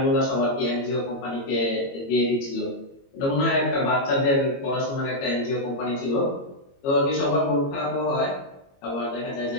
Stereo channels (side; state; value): right; late; 22 ms